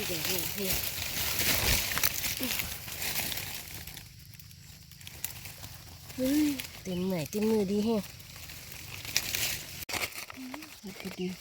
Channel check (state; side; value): identical; both; correlation 1.00